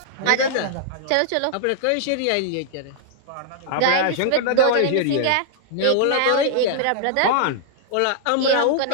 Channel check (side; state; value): both; different; correlation -0.01